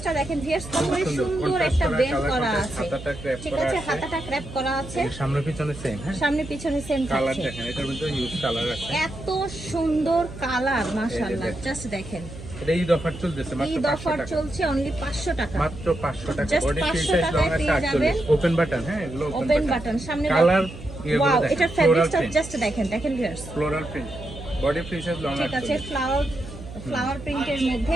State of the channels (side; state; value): right; noise; hum, 14 dB below the sound